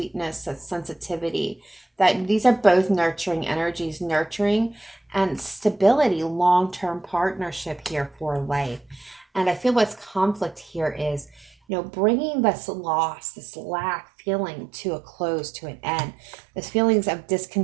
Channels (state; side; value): drops out; left; at 11.5 s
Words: that sensitivity. That these are both nurturing energies, nurturing and stability, long-term partnership here for life. And I feel what's conflict here is, bringing this loss, this lack feeling to a close, to an end. This feelings of